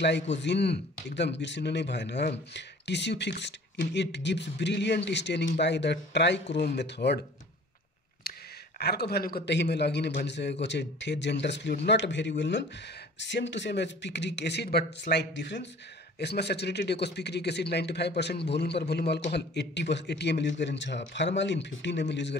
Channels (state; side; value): normal; both; correlation 0.48